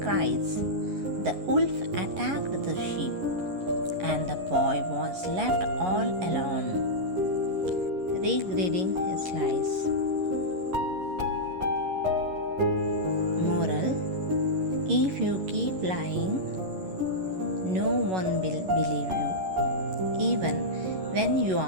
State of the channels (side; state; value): left; late; 11 ms